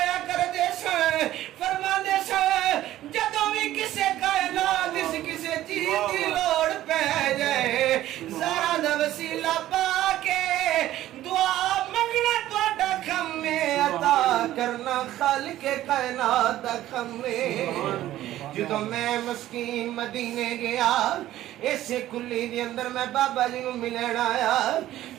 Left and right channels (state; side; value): quieter; left; 14.0 dB